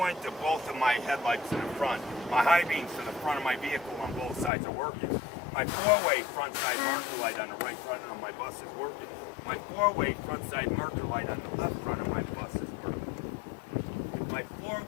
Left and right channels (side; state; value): right; drops out; at 4.5 s